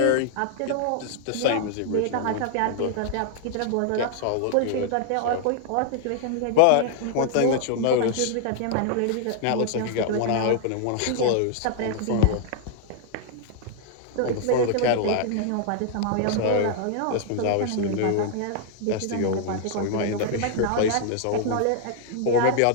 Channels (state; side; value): different; both; correlation -0.01